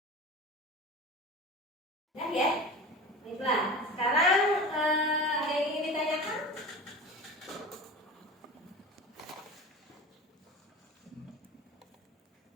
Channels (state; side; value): normal; both; correlation 0.32